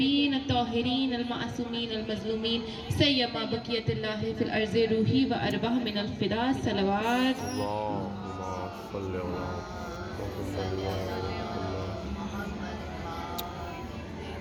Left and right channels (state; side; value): identical; both; correlation 1.00